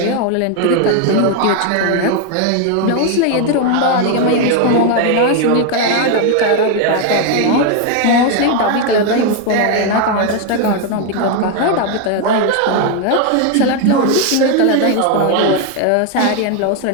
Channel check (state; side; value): different; both; correlation 0.01